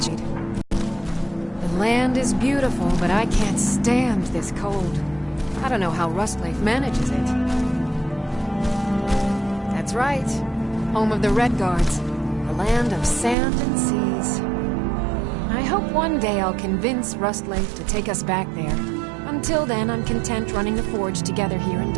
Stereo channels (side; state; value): left; drops out; at 13.4 s